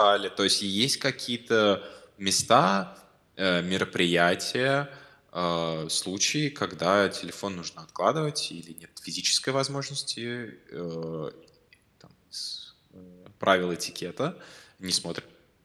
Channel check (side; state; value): both; identical; correlation 1.00